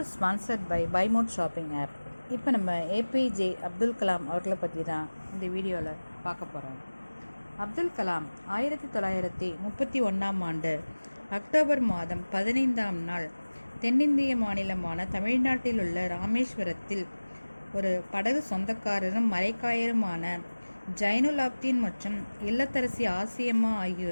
is sponsored by Buy Mode Shopping app. இப்போ நம்ம ஏபிஜே அப்துல் கலாம் அவர்களை பற்றி தான் இந்த வீடியோவில் பார்க்க போகிறோம். அப்துல் கலாம் 1931ஆம் ஆண்டு அக்டோபர் மாதம் 15ஆம் நாள் தென்னிந்திய மாநிலமான தமிழ்நாட்டில் உள்ள ராமேஸ்வரத்தில் ஒரு படகு சொந்தக்காரரும் மரைக்காயருமான ஜைனுலாப்தீன் மற்றும் இல்லத்தரசி ஆசியம்மா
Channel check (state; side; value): inverted; both; correlation -1.00